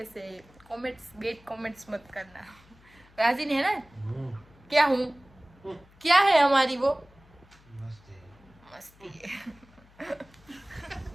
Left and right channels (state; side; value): noise; left; hum, 27 dB below the sound